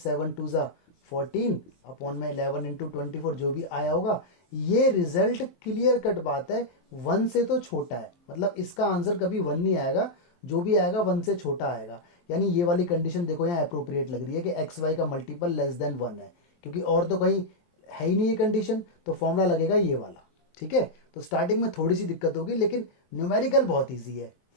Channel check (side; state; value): right; late; 23 ms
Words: 2 ज़ा 14 अपॉन में 11 इंटू 24, जो भी आया होगा। ये रिजल्ट क्लियर कट बात है, 1 से तो छोटा है, मतलब इसका आंसर कभी 1 नहीं आएगा, जो भी आएगा 1 से छोटा आएगा। यानी ये वाली कंडीशन देखो यहाँ अप्रोप्रिएट लग रही है कि एक्स वाई का मल्टीपल लेस देन 1 है, क्योंकि और तो कहीं है ही नहीं ये कंडीशन, तो फॉर्मूला लगेगा ये वाला, ठीक है। तो स्टार्टिंग में थोड़ी सी दिक्कत होगी, लेकिन न्यूमेरिकल बहुत ईजी है,